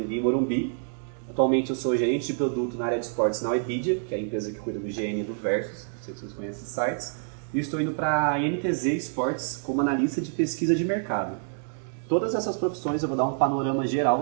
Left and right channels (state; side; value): silent; left; 59 dB below the other